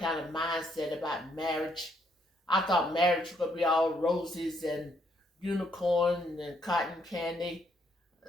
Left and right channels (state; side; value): normal; both; correlation 0.71